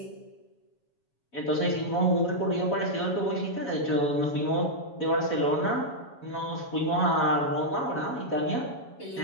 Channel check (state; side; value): late; right; 7.2 ms